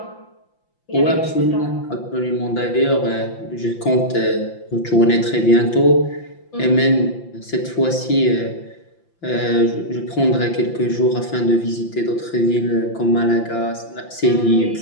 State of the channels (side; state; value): right; late; 5.8 ms